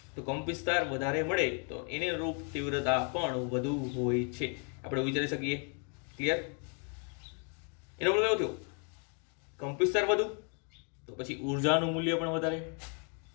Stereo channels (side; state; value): right; quieter; 39.9 dB